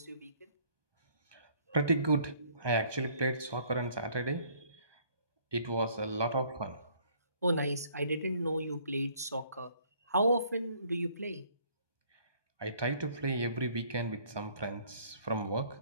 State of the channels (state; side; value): inverted; both; correlation -0.60